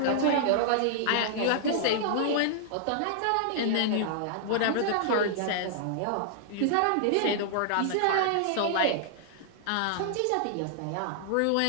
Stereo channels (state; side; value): different; both; correlation -0.01